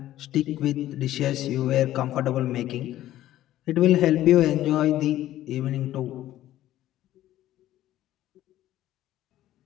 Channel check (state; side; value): quieter; right; 13.8 dB